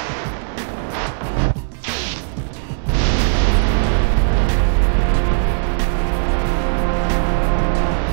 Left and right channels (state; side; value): silent; left; 67 dB below the other